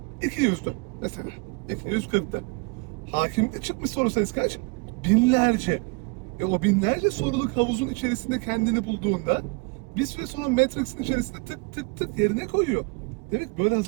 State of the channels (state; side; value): quieter; left; 30.2 dB